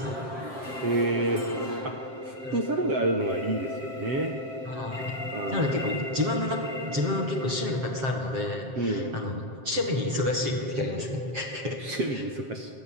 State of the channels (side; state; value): left; late; 7.5 ms